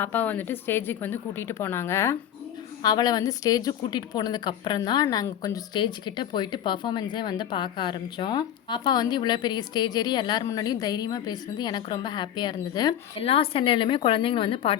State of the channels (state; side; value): quieter; right; 10.5 dB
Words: பாப்பாவை வந்துட்டு ஸ்டேஜுக்கு வந்து கூட்டிகிட்டு போனாங்க. அவளை வந்து ஸ்டேஜுக்கு கூட்டிகிட்டு போனதுக்கப்புறம் தான் நாங்கள் கொஞ்சம் ஸ்டேஜ்கிட்ட போயிட்டு பர்ஃபார்மன்ஸே வந்து பார்க்க ஆரம்பித்தோம். பாப்பா வந்து இவ்வளோ பெரிய ஸ்டேஜ் ஏறி எல்லார் முன்னாடியும் தைரியமாக பேசுனது எனக்கு ரொம்ப ஹாப்பியாக இருந்தது. எல்லா சென்னையிலுமே குழந்தைங்களை வந்து